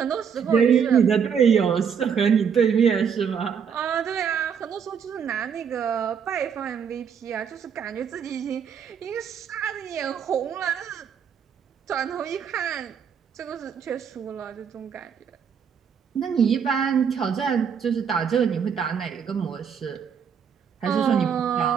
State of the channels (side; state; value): left; quieter; 7.2 dB